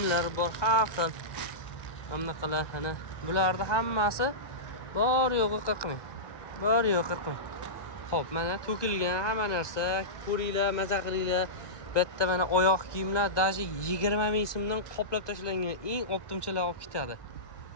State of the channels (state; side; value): late; right; 1.2 ms